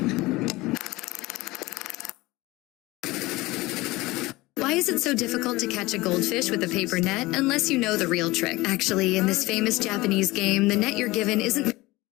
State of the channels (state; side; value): quieter; right; 20.5 dB